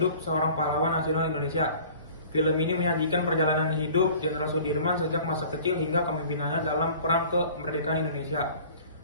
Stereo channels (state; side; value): inverted; both; correlation -0.46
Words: seorang pahlawan nasional Indonesia. Film ini menyajikan perjalanan hidup Jenderal Sudirman sejak masa kecil hingga kepemimpinannya dalam perang kemerdekaan Indonesia.